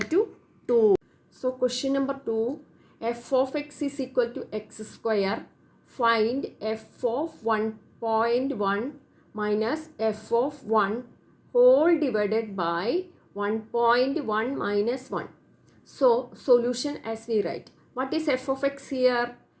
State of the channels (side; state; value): both; identical; correlation 1.00